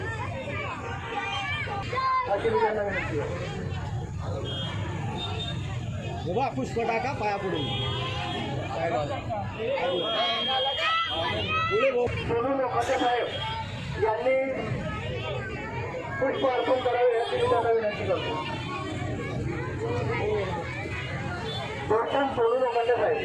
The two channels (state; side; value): identical; both; correlation 1.00